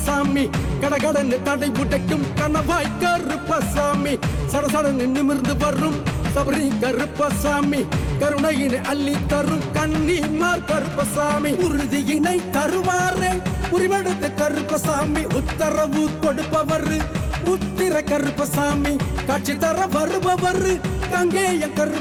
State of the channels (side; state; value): both; identical; correlation 1.00